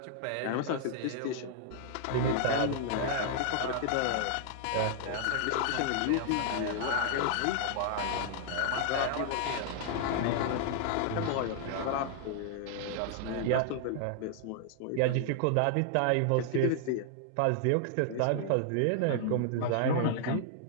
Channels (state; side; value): different; both; correlation -0.01